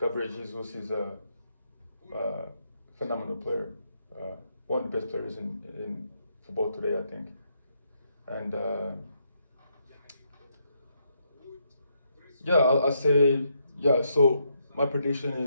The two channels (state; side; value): inverted; both; correlation -0.77